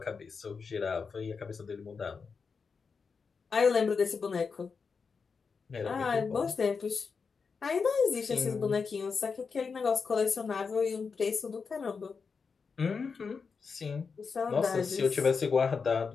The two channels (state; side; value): quieter; right; 5.3 dB